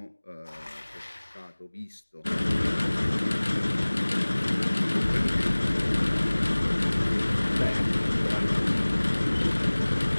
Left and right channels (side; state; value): both; inverted; correlation -1.00